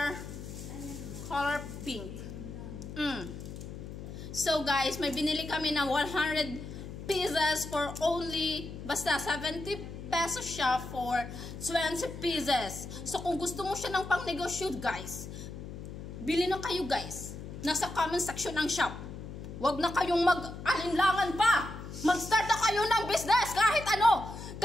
pink. So guys, may binili kami na 100 pieces for only, basta 70 pesos siya for 20 pieces. So kung gusto mo siya ng pang negosyo guys, bili na kayo guys. Nasa comment section ng shop. Huwag na kayong mag-alinlangan pa. Mag-start na kayo ng business kahit ano.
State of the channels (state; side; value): noise; left; hum, 10 dB below the sound